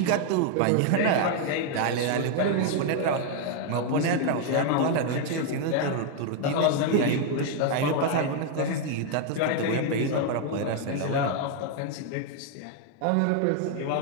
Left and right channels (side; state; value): both; different; correlation 0.01